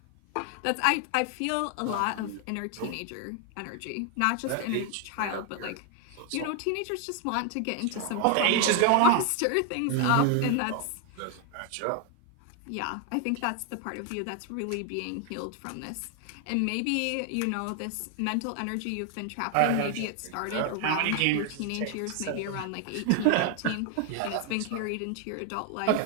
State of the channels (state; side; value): different; both; correlation 0.00